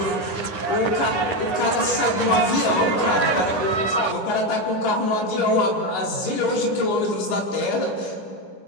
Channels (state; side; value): late; right; 9.6 ms